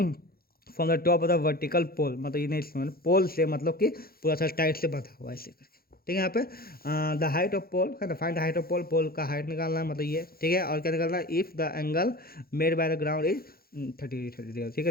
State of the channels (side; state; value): right; late; 0.44 ms